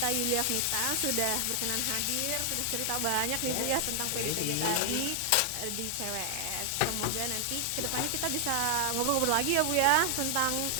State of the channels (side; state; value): both; different; correlation 0.00